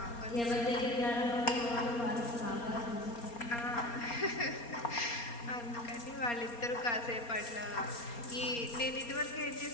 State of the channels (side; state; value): right; late; 4.3 ms